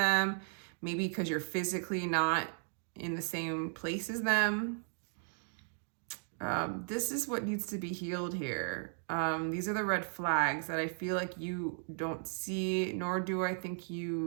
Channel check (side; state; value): left; silent; 54 dB below the other